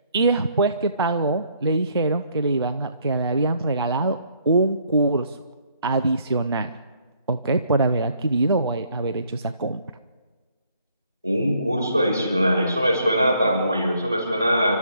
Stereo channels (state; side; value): inverted; both; correlation -0.66